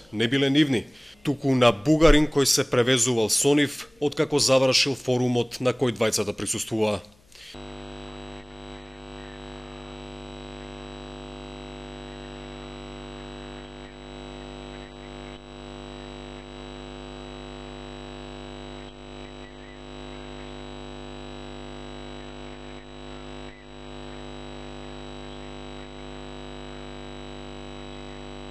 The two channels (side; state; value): left; noise; hum, 29 dB below the sound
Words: не биле нивни, туку на бугарин кој се превезувал со нив откако завршил форумот на кој двајцата присуствуваа. После тоа заминавме во метрото во близина на Благоевград, наш пријател бугарски државјанин кој што пред тоа купил ловечка муниција и ја заборави во нашата кола. Кога отидовме на границата, при рутинска проверка беше пронајдена неколку парчиња